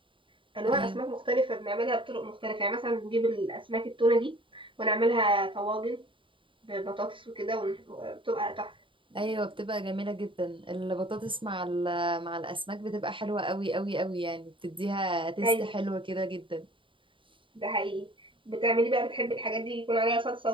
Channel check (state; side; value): late; left; 0.25 ms